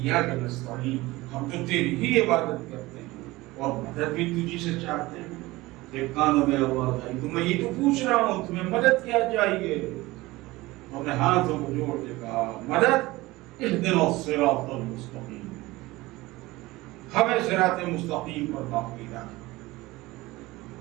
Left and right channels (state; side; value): quieter; left; 19.9 dB